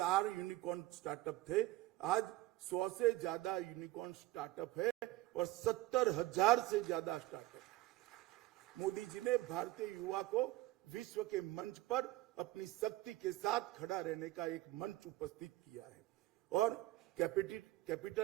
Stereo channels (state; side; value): quieter; left; 17.2 dB